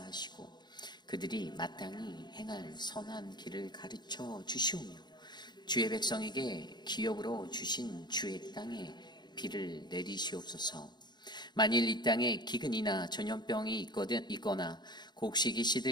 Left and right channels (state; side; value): late; right; 0.21 ms